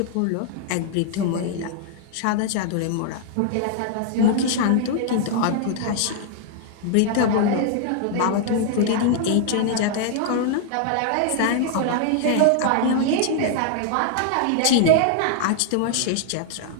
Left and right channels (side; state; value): both; different; correlation 0.00